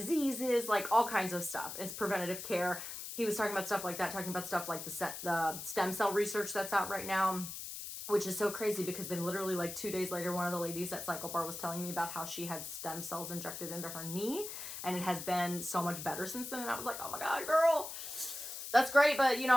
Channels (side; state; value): left; noise; hiss, 8 dB below the sound